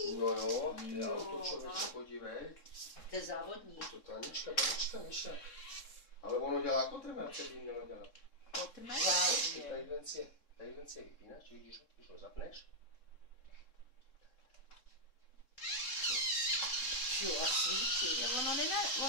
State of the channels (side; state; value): right; late; 3.6 ms